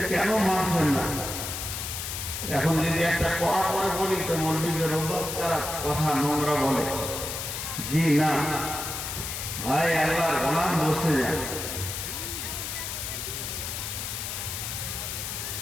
কেন মানছেন না? এখন যদি একটা কড়া করে বলি তো মৌলবীদের অভ্যাস খারাপ, কথা নোংরা বলে। জি না ভাই, আল্লাহর গোলাম বসে যান।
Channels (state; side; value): noise; left; hiss, 5 dB below the sound